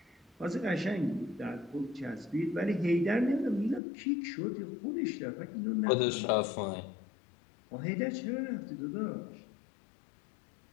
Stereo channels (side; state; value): right; drops out; at 3.8 s